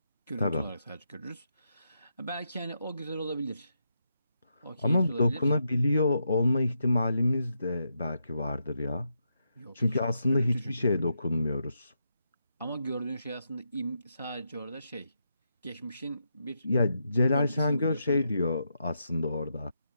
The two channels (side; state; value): both; inverted; correlation -0.83